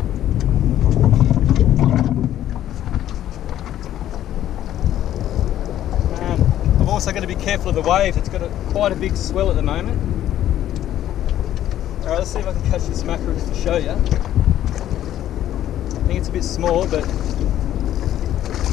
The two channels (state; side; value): quieter; right; 12.1 dB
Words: I'm also going to be careful of the waves. It's got quite a big swell at the moment. Alright, let's see if I can catch this mackerel just to show you. I think it's a bit small, but